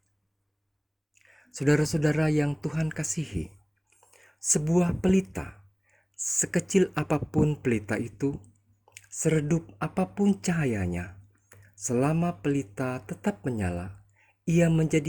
Saudara-saudara yang Tuhan kasihi, sebuah pelita, sekecil apapun pelita itu, seredup apapun cahayanya, selama pelita tetap menyala, ia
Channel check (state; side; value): identical; both; correlation 1.00